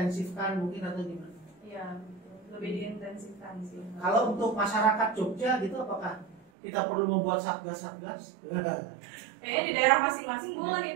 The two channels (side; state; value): left; drops out; at 6.4 s